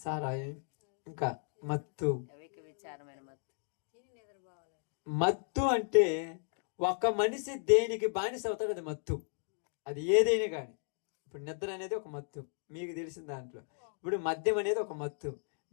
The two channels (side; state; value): right; silent; 54 dB below the other